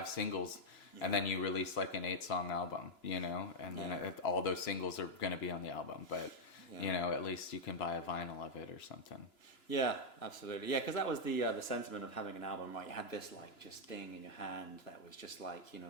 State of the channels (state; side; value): late; right; 2.9 ms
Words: singles, and then you release like an 8-song album, you know, and then all those singles are going to be on the album. But you know, at least you can buy a vinyl of it or something. Yeah, absolutely. Yeah, because that was the sentiment of having an album, right? You had this like just thing in your hand that was just like, you know,